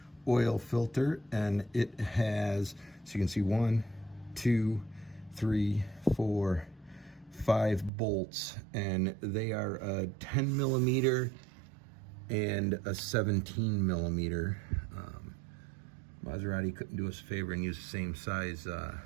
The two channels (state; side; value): drops out; left; at 7.9 s